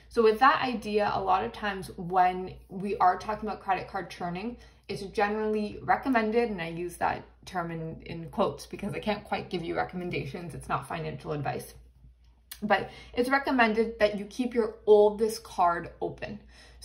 So with that idea, a lot of times when we are talking about credit card churning, it's generally recommended, and I use that term in quotes because I can't quite give you recommendations. It's not financial advice. But it's recommended that you keep your oldest card open.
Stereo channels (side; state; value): both; identical; correlation 1.00